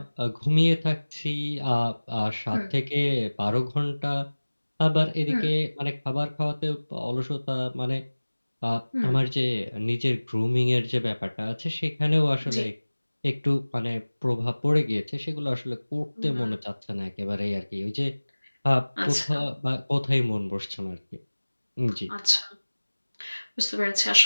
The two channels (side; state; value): both; inverted; correlation -1.00